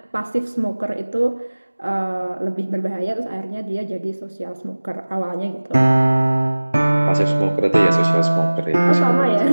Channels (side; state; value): both; inverted; correlation -1.00